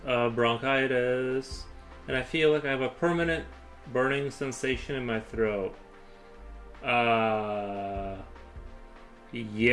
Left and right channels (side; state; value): both; identical; correlation 1.00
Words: of bronchitis, and I feel like I have a permanent burning sensation in my throat. Yeah,